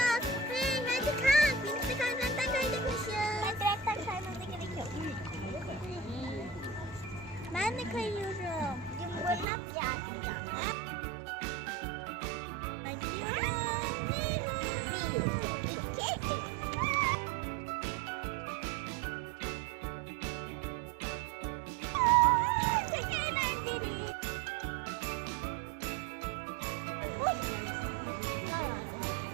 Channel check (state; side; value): drops out; left; at 9.5 s